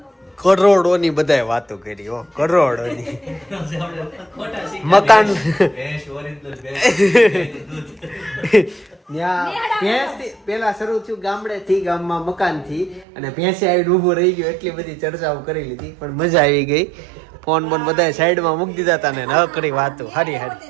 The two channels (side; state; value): left; drops out; at 13.1 s